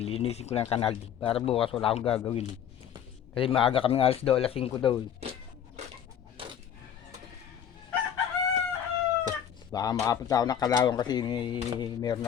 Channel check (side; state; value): right; quieter; 9.0 dB